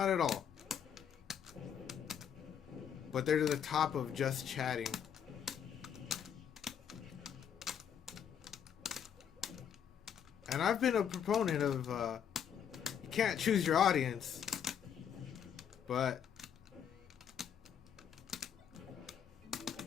at all. But they're to the top of Just Chatting. And I've been a proponent of, you can't choose your audience, but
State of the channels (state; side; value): quieter; right; 8.4 dB